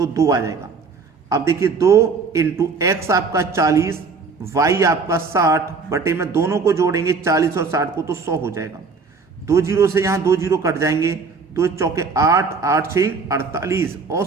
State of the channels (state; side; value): quieter; left; 4.6 dB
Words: 2 आ जाएगा। अब देखिए 2 इंटू एक्स आपका 40, y आपका 60 बटे में दोनों को जोड़ेंगे 40 और 60 को तो 100 हो जाएगा। 2 जीरो से यहाँ 2 जीरो कट जाएंगे, 2 चौके 8, 8 6 48,